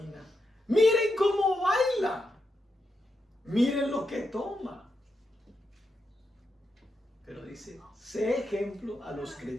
Miren cómo baila. Miren lo que toma. Pero dice, sé ejemplo a los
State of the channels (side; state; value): both; normal; correlation 0.85